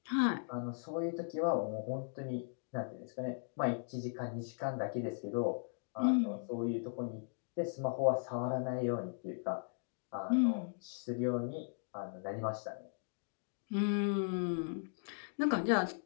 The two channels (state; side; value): silent; right; digital silence